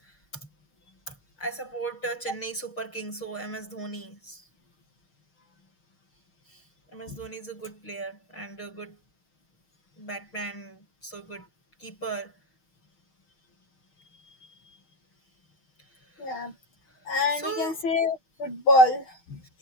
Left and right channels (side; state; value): right; late; 6.4 ms